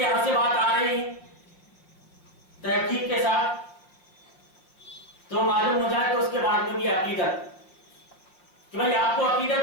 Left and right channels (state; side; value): late; right; 5.8 ms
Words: سے بات آ رہی ہے تحقیق کے ساتھ تو معلوم ہو جائے تو اس کے بعد میں بھی عقیدت کہ بھائی آپ کو